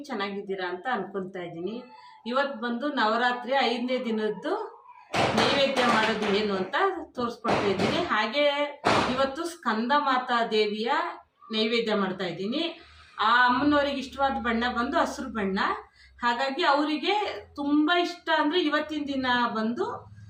ಚೆನ್ನಾಗಿದ್ದೀರಾ ಅಂತ ಅನ್ಕೊತಾ ಇದ್ದೀನಿ. ಇವತ್ತು ಬಂದು ನವರಾತ್ರಿ 5ನೇ ದಿನದ್ದು ನೈವೇದ್ಯ ಮಾಡೋದು ಏನು ಅಂತ ತೋರಿಸ್ಕೊಡ್ತಾ ಇದ್ದೀನಿ. ಹಾಗೆ ಇವತ್ತು ಸ್ಕಂದ ಮಾತಾ ದೇವಿಯ ನೈವೇದ್ಯ ಮಾಡ್ತಾ ಇದ್ದೀನಿ. ಆ ಅಮ್ಮನವರಿಗೆ ಇಷ್ಟವಾದ ಬಣ್ಣ ಬಂದು ಹಸಿರು ಬಣ್ಣ. ಹಾಗಾಗಿ ಅವರಿಗೆ ತುಂಬ ಇಷ್ಟ ಅಂದರೆ ಇವತ್ತಿನ ದಿನ ಬಂದು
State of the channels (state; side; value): identical; both; correlation 1.00